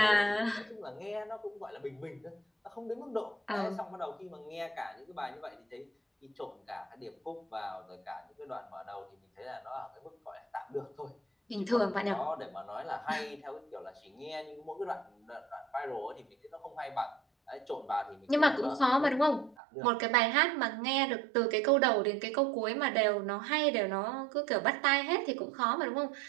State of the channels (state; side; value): drops out; left; at 19.6 s